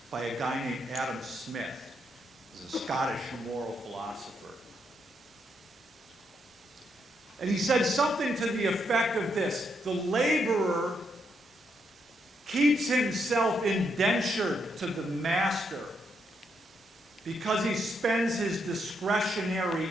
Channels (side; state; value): both; normal; correlation 0.78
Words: by a guy named Adam Smith. He's a Scottish moral philosopher. And he said something to the effect of this: the laborer keeps himself indentured to the master because he spends his discretionary